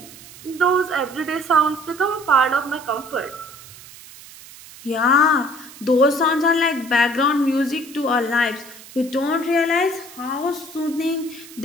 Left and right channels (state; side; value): noise; right; hiss, 18 dB below the sound